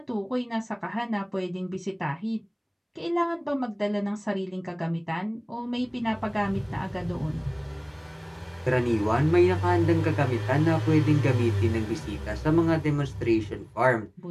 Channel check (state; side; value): identical; both; correlation 1.00